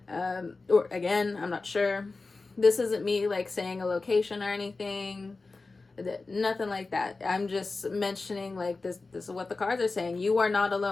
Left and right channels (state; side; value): quieter; right; 3.7 dB